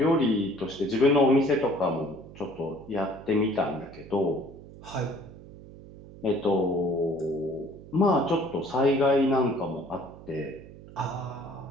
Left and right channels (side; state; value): right; noise; hum, 17 dB below the sound